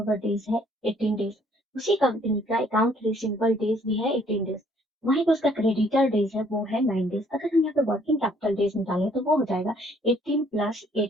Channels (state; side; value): normal; both; correlation 0.63